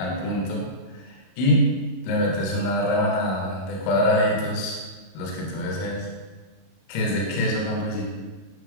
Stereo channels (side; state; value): right; late; 31 ms